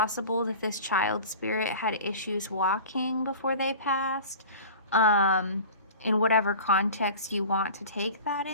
that this child spirit had issues walking before they passed, in whatever context you want to take that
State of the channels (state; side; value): inverted; both; correlation -0.38